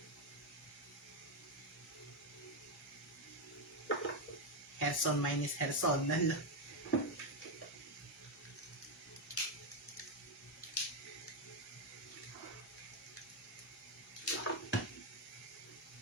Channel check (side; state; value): both; normal; correlation 0.05